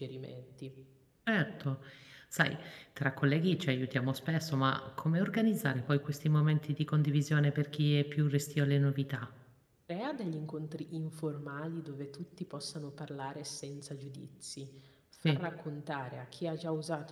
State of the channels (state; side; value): identical; both; correlation 1.00